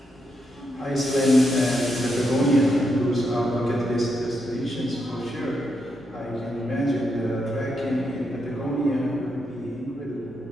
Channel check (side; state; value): both; normal; correlation 0.82